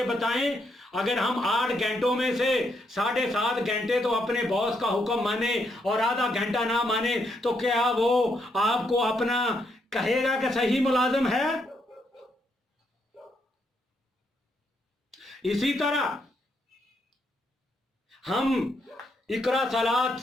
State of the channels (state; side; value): normal; both; correlation 0.77